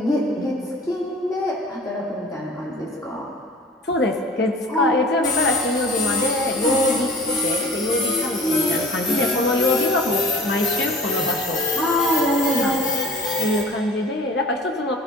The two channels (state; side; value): normal; both; correlation 0.45